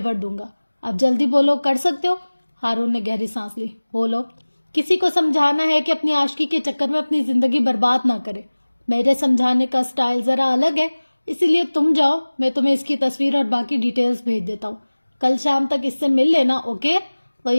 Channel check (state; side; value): inverted; both; correlation -1.00